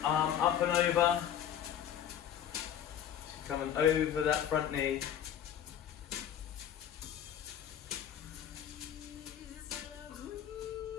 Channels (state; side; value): quieter; right; 9.7 dB